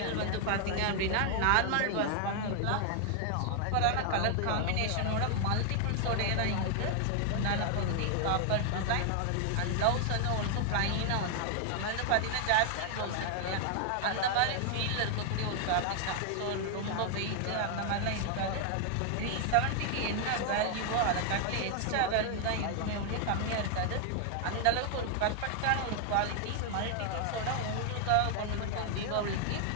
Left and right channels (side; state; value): both; different; correlation 0.00